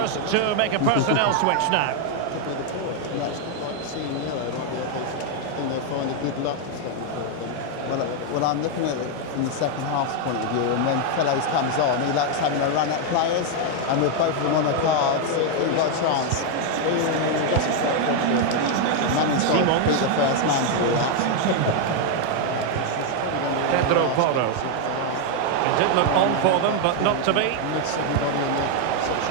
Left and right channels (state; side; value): different; both; correlation 0.01